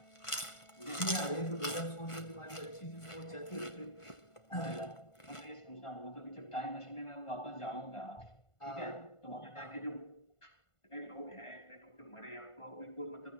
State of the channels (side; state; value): right; late; 1.5 ms